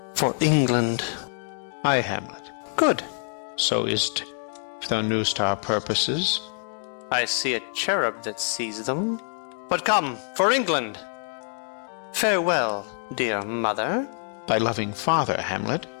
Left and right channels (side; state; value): right; silent; 61 dB below the other